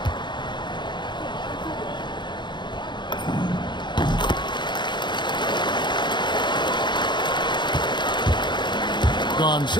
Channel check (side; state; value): right; late; 0.22 ms